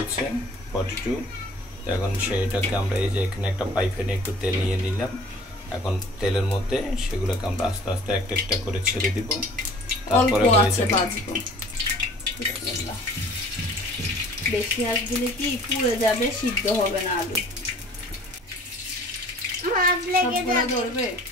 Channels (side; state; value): both; normal; correlation 0.50